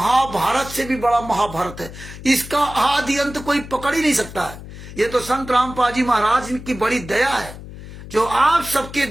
से भी बड़ा महाभारत है। इसका आदि अंत कोई पकड़ ही नहीं सकता है। ये तो संत रामपाल जी महाराज की बड़ी दया है जो आप सबके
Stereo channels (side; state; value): left; noise; hum, 14 dB below the sound